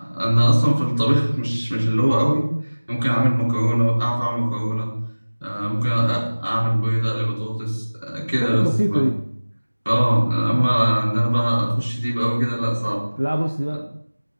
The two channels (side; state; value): both; inverted; correlation -1.00